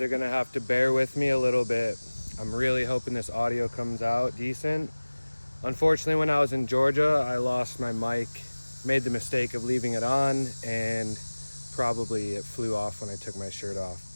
are gonna have to bear with me a little bit. I'm really hoping this audio comes out decent. Unfortunately, when I was in Georgia, I lost my mic, made the mistake of leaving it on, and probably it flew off when I took my shirt off,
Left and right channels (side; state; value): both; inverted; correlation -1.00